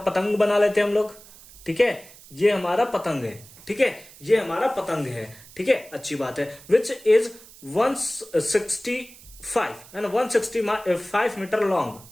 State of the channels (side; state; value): right; noise; hiss, 21 dB below the sound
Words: पतंग बना लेते हैं हम लोग। ठीक है, ये हमारा पतंग है। ठीक है, ये हमारा पतंग है। ठीक है, अच्छी बात है। विच इज 165 है ना, 165 मीटर लॉन्ग।